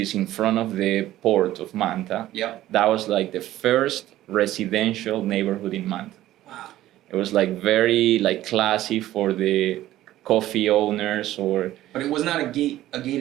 in front of the port of Manta, that was like the first residential neighborhood in Manta. Wow. It was like very like classy for the coffee owners But it was not a gated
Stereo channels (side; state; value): left; quieter; 14.4 dB